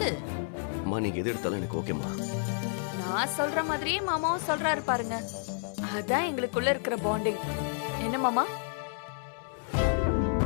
அம்மா, நீங்க எது எடுத்தாலும் எனக்கு ஓகேம்மா. நான் சொல்ற மாதிரியே மாமாவும் சொல்றாரு பாருங்க. அதான் எங்களுக்குள்ள இருக்கிற பாண்டிங். என்ன மாமா?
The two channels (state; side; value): silent; right; 58 dB below the other